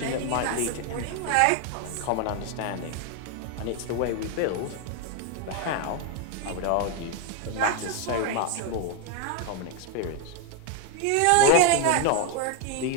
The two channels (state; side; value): different; both; correlation 0.01